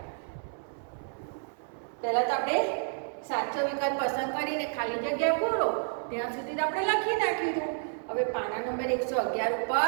પહેલા તો આપણે સાચો વિકલ્પ પસંદ કરીને ખાલી જગ્યા પૂરો ત્યાં સુધી તો આપણે લખી નાખ્યું હતું. હવે પાના નંબર 111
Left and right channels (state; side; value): silent; left; 58 dB below the other